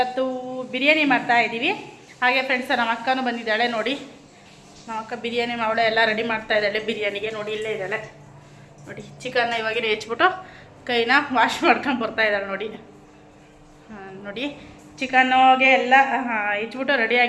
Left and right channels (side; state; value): both; identical; correlation 1.00